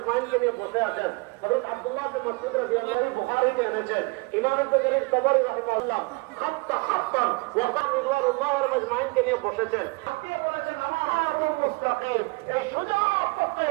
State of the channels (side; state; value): left; quieter; 28.3 dB